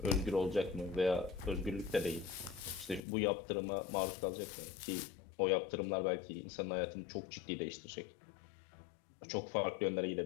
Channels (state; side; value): drops out; right; at 3.0 s